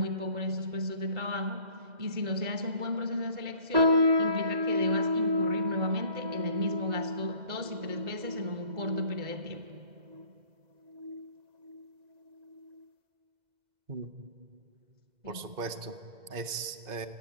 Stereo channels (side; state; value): left; late; 2.0 ms